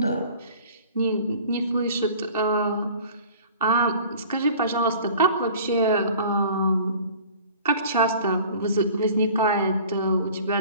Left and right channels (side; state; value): both; inverted; correlation -0.45